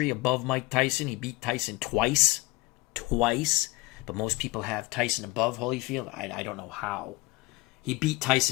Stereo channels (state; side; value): quieter; right; 21.6 dB